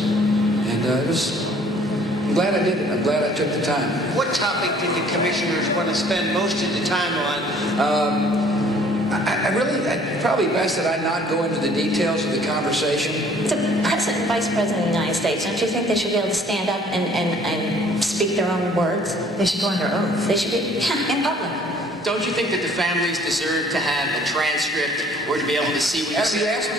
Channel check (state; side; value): normal; both; correlation 0.56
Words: and I'm glad I did it. I'm glad I took the time. What topic did the commissioners want to spend most of the time on? I probably best that I not go into the details of the conversation. It's a President and Vice President of the United States. Don't you think they should be able to stand up and speak their own words? They should go under oath. They should be in public. Don't you think that the families deserve to have a transcript or to be able to see what you said? You asked me